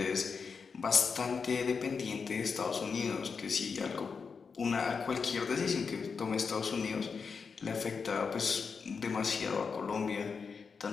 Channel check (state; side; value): quieter; right; 5.5 dB